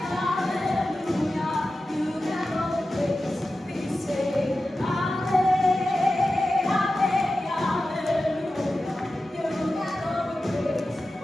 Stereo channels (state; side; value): normal; both; correlation 0.93